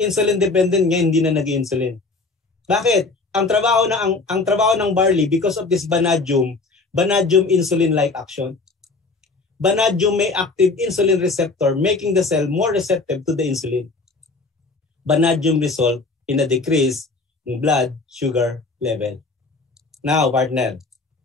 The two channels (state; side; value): quieter; right; 3.7 dB